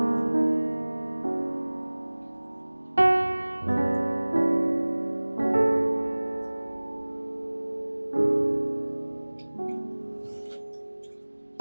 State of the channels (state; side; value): inverted; both; correlation -1.00